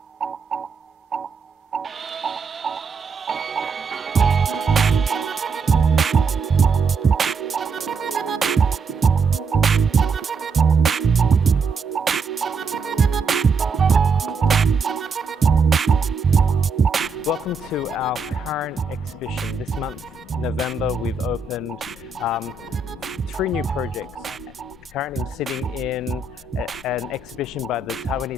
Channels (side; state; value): left; quieter; 4.5 dB